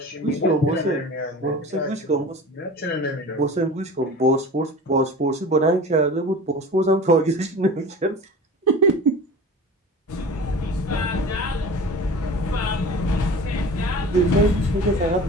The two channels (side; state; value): both; normal; correlation 0.37